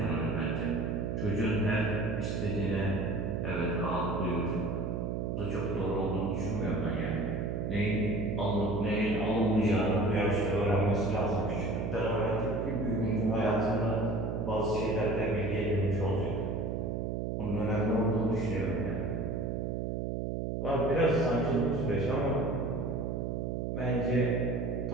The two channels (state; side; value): noise; right; hum, 1 dB below the sound